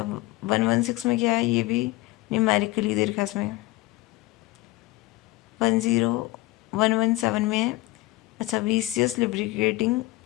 116 में क्या है, ये भी न्यूमेरिकली दे रखा है इसमें। 10117 में है, अच्छा वीसियस लिब्रिकेटिंग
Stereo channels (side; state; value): right; quieter; 19.4 dB